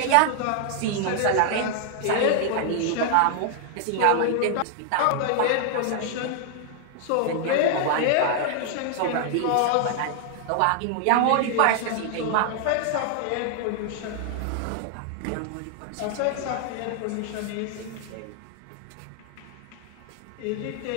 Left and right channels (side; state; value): both; different; correlation -0.01